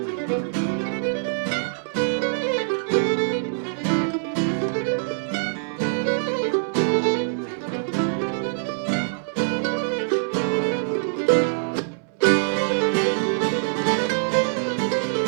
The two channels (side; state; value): left; silent; 63 dB below the other